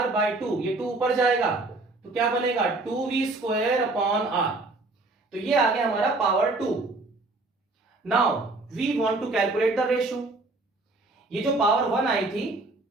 बाई 2, ये 2 ऊपर जाएगा तो क्या बनेगा? 2V square upon R। तो ये आ गया हमारा power 2। Now we want to calculate the ratio. ये जो पावर 1 आई थी,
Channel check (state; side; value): quieter; left; 3.2 dB